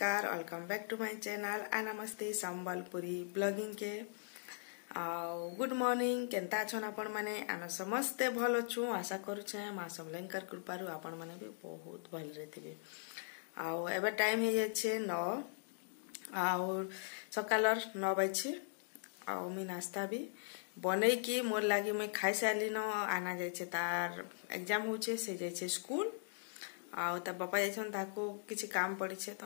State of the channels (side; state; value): right; silent; digital silence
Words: Welcome back to my channel आ नमस्ते संबलपुरी ब्लॉगिंग के गुड मॉर्निंग। केंता छन आपण माने? आना समस्ते भल छु आशा करूछे। मां समलेंकर कृपारु आपण माने भी बहुत भल रहथिबे। एबे टाइम हे जाछे 9 और सकालर 9 बजे। मी नाश्ता भी बनै की मोर लागी मैं खाई सारली न। आना जाइछे तार एग्जाम होछे, से जाइछे स्कूल। ता बापा जाइछन ताको किछि काम पड़ी छे तो